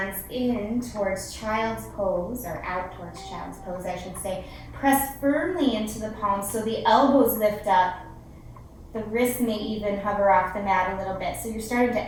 in towards child's pose, or out towards child's pose, I should say. Press firmly into the palms so the elbows lift up. The wrists may even hover off the mat a little bit. So you're starting to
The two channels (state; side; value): identical; both; correlation 1.00